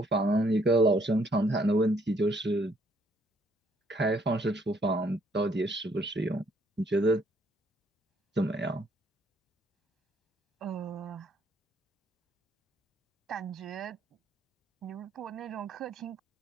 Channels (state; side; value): normal; both; correlation 0.67